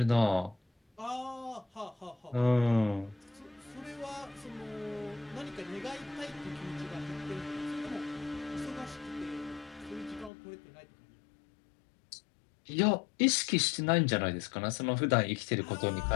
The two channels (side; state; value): right; drops out; at 10.3 s